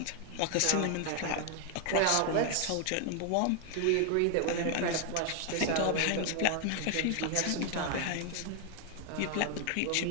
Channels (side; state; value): both; different; correlation 0.00